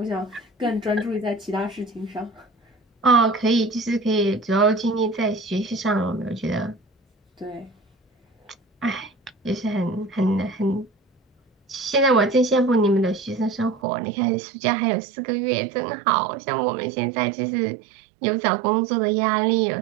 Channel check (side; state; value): left; drops out; at 13.8 s